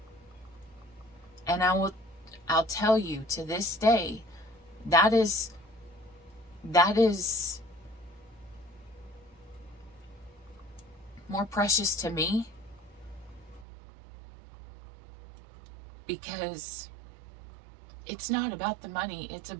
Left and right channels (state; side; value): drops out; left; at 13.7 s